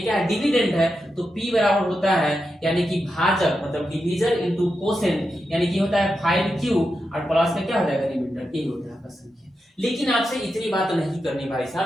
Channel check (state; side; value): normal; both; correlation 0.88